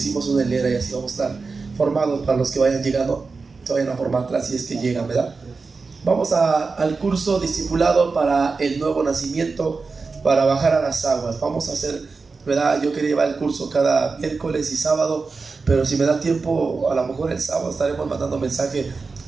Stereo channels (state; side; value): quieter; left; 4.4 dB